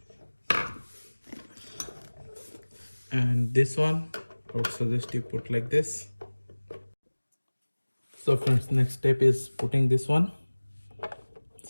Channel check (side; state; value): both; inverted; correlation -1.00